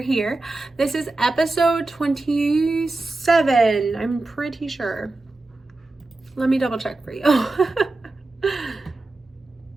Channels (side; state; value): left; quieter; 3.1 dB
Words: here. This is episode 27, I'm pretty sure. Let me double check for you.